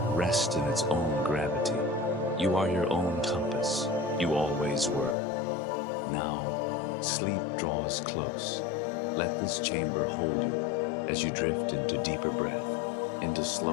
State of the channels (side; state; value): right; drops out; at 5.2 s